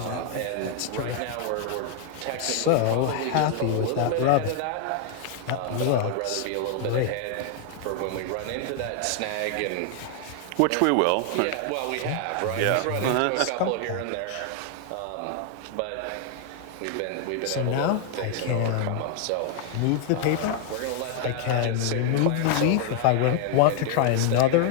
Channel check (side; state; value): both; different; correlation 0.00